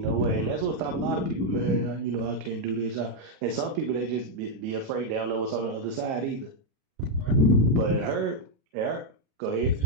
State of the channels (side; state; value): left; late; 37 ms